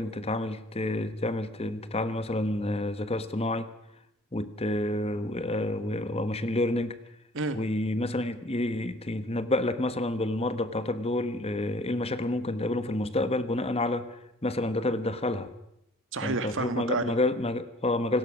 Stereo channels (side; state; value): both; normal; correlation 0.54